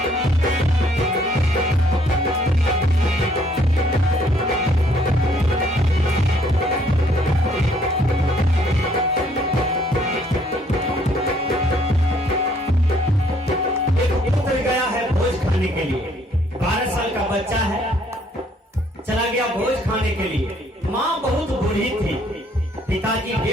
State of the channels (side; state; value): both; normal; correlation 0.65